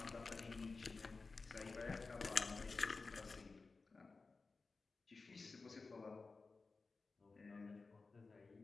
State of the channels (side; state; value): right; quieter; 4.0 dB